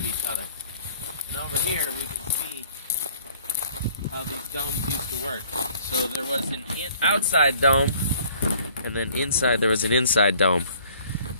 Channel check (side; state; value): both; inverted; correlation -0.56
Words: each other. And over here we can see how these domes used to work. So there was an outside dome, and then inside there was an inside dome.